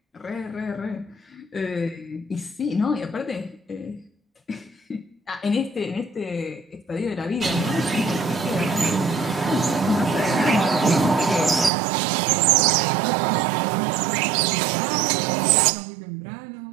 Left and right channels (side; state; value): left; drops out; at 11.7 s